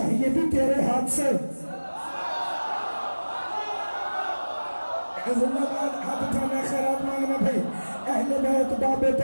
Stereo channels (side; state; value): both; inverted; correlation -1.00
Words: بھی تیرے ہاتھ سے. زندہ باد, ہاتھ اٹھانا, خیرات مانگنا بھائی. اہل بیت باب